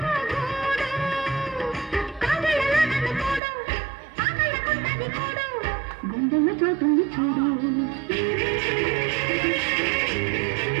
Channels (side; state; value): left; drops out; at 3.4 s